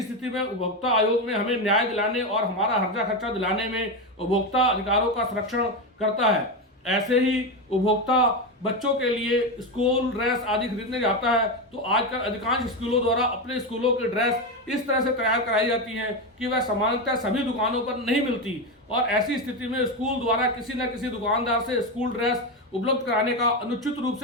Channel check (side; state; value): both; normal; correlation 0.13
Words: स्थिति में उपभोक्ता आयोग में हमें न्याय दिलाने और हमारा हर्जा खर्चा दिलाने में उपभोक्ता अधिकारों का संरक्षण करता है। ऐसे ही उपभोक्ता बच्चों के लिए स्कूल ड्रेस आदि खरीदने जाता है तो आजकल अधिकांश स्कूलों द्वारा अपने स्कूलों की ड्रेस इस तरह से तैयार कराई जाती हैं कि वह सामान्यतः सभी दुकानों पर नहीं मिलती और ऐसी स्थिति में स्कूल द्वारा किसी न किसी दुकानदार से स्कूल ड्रेस उपलब्ध कराने का अनुचित रूप